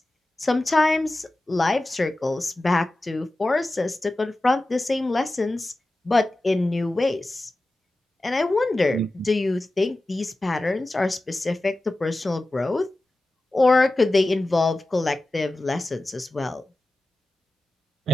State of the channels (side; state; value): both; normal; correlation 0.95